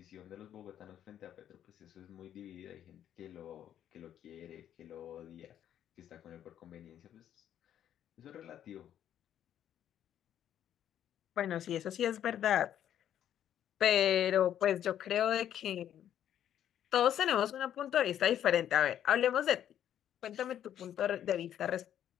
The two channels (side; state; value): right; quieter; 10.5 dB